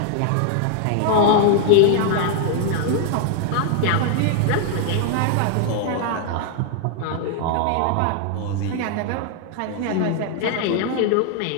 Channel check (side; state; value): both; different; correlation 0.00